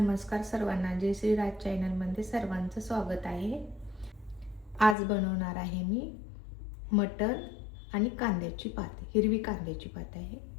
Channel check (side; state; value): right; drops out; at 5.0 s